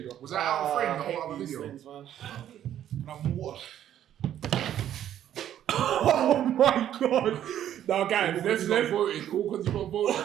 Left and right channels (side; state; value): left; quieter; 11.0 dB